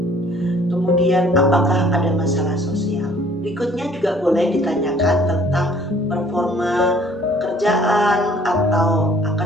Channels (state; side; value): normal; both; correlation 0.57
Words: Kemudian apakah ada masalah sosial? Berikutnya juga boleh ditanyakan tentang performa pekerjaan atau